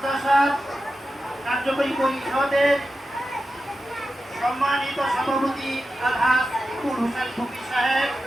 কার্যকরী পরিষদের সম্মানিত সভাপতি আলহাজ ইকুল হোসেন ফকির সাহেব,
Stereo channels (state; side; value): normal; both; correlation 0.91